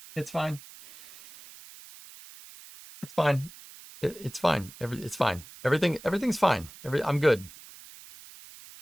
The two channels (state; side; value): noise; right; hiss, 19 dB below the sound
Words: It's fine. It's fine. It's fine. It's fine. Everything's fine. I'm good.